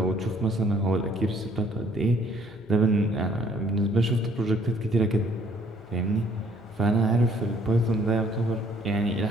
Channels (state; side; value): noise; left; hum, 27 dB below the sound